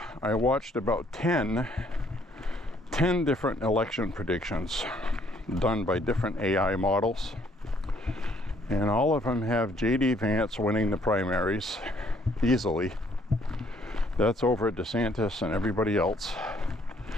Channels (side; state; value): both; normal; correlation 0.65